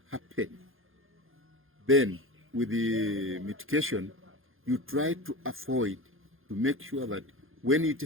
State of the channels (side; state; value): left; late; 0.60 ms